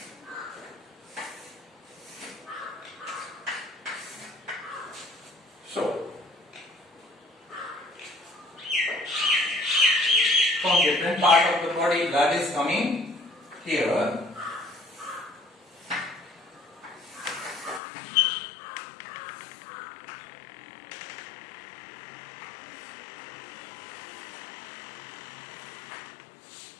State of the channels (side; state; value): right; drops out; at 17.8 s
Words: so from different part of the body blood is coming here,